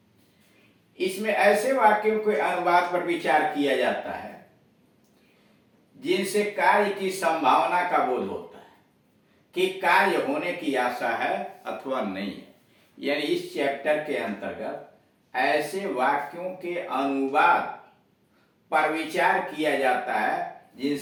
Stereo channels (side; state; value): both; identical; correlation 1.00